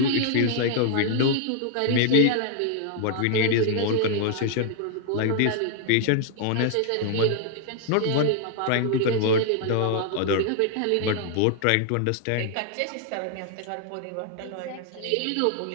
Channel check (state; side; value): different; both; correlation 0.00